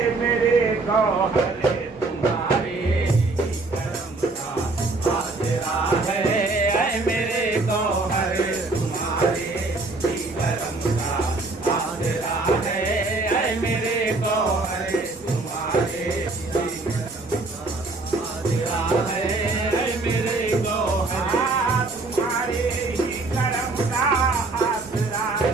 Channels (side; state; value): left; quieter; 3.4 dB